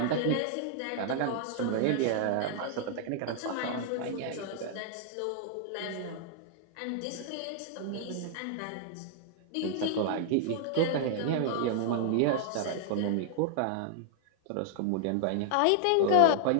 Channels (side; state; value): both; different; correlation -0.01